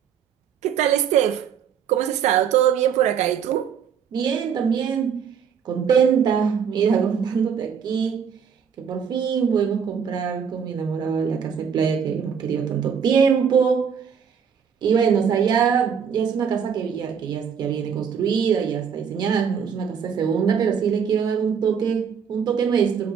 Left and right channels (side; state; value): left; quieter; 7.3 dB